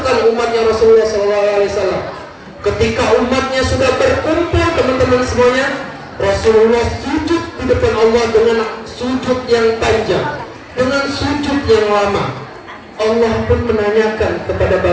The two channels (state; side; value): identical; both; correlation 1.00